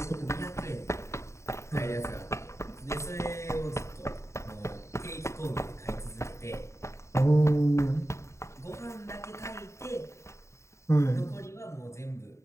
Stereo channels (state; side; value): late; right; 0.14 ms